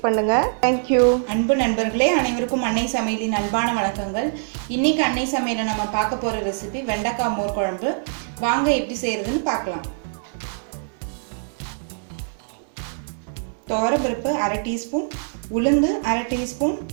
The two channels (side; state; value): left; silent; digital silence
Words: பண்ணுங்கள். தேங்க்யூ. அன்பு நண்பர்களே, அனைவருக்கும் அன்னை சமையலின் அன்பான வணக்கங்கள். இன்னைக்கு அன்னை சமையலை நம்ம பார்க்க போகிற ரெசிபி வெண்டைக்காய் மோர் குழம்பு. வாங்க எப்படி செய்கிறதுன்னு பார்க்கலாம். துவரப்பருப்பு அரை டீஸ்பூன், உளுந்து அரை டீஸ்பூன்,